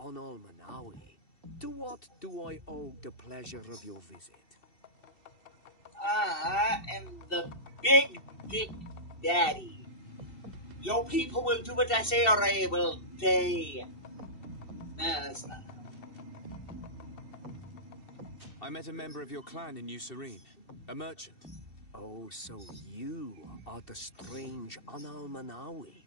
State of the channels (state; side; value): late; right; 2.7 ms